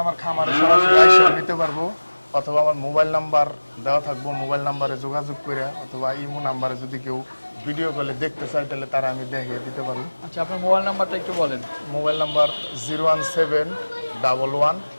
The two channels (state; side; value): inverted; both; correlation -1.00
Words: আমার খামারে সরাসরি আইসা নিতে পারবো, অথবা আমার মোবাইল নাম্বার দেওয়া থাকবো, মোবাইল নাম্বারে যোগাযোগ করে, অথবা ইমো নাম্বারে যদি কেউ ভিডিও কলে দেখতে চায় তাহলে তারা আমি দেখিয়ে দিতে পারবো। আচ্ছা, আপনার মোবাইল নাম্বারটা একটু বলেন। মোবাইল নাম্বার